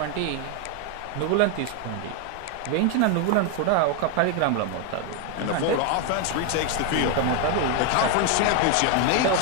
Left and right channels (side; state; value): both; different; correlation 0.01